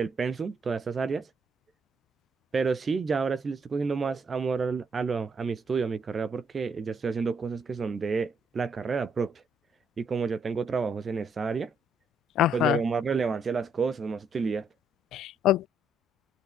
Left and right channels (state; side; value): normal; both; correlation 0.72